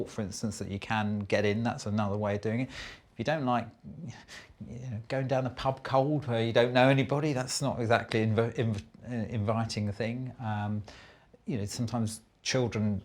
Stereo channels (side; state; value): both; identical; correlation 1.00